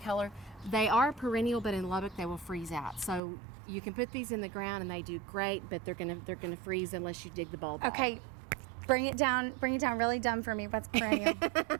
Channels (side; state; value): left; drops out; at 3.2 s